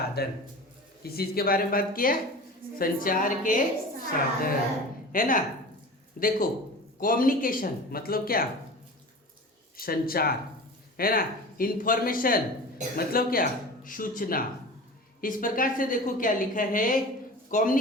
किस चीज के बारे में बात किया? संचार के साधन, है ना। देखो कम्युनिकेशन मतलब क्या? संचार, है ना। इंफॉर्मेशन मतलब क्या? सूचना। इस प्रकार से देखो क्या लिखा है,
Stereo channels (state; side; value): normal; both; correlation 0.35